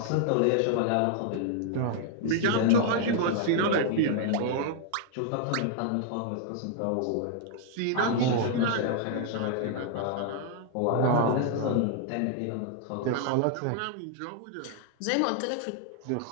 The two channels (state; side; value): different; both; correlation 0.00